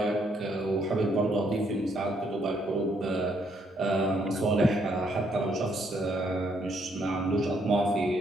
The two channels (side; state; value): both; normal; correlation 0.71